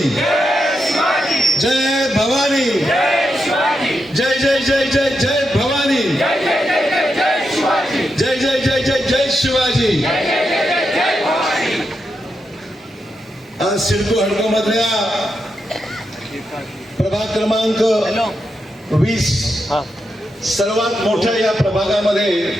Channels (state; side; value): normal; both; correlation 0.85